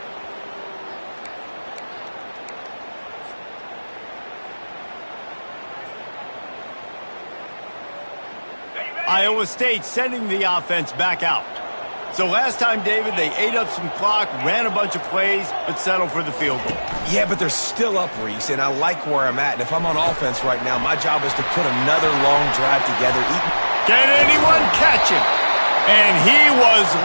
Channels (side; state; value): both; inverted; correlation -1.00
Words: Iowa State sending the offense back out. So last time, David, they ate up some clock, ran a bunch of plays, but settled for the field goal. Yeah, but they're still up, Reese, and I like where I'm at. And if I'm on offense right now, my job is to put another long drive together. Can anyone catch him? And he was